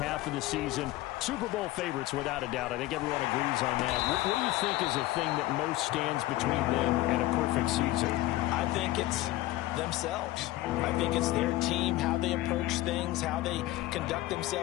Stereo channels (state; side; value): quieter; right; 16.9 dB